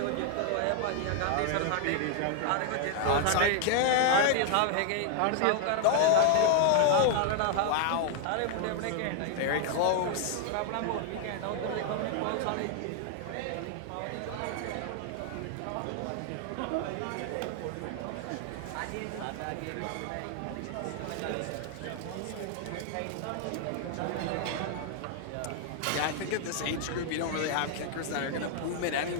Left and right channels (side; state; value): both; different; correlation 0.00